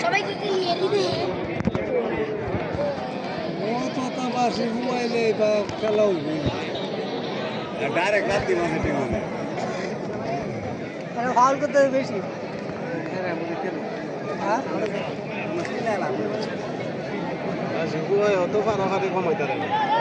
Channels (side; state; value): both; identical; correlation 1.00